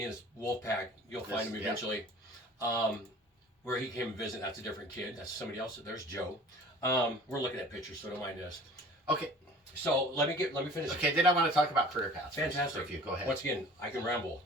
and his wolf pack, you'll find him eventually. Where he came and visit, that's a different kid. That's somebody else. There's Joe. We're looking at pictures, so don't mind us. Okay. So let me finish. Okay, then I want to talk about career paths. Fantastic. If you go ahead. Once again, I can ramble.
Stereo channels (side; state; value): both; normal; correlation 0.46